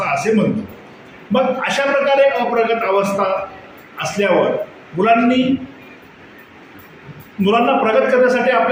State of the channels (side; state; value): both; identical; correlation 1.00